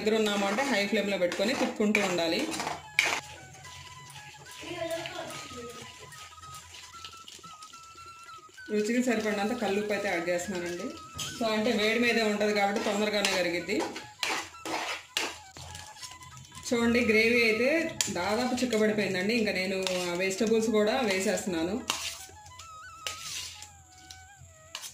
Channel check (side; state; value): both; identical; correlation 1.00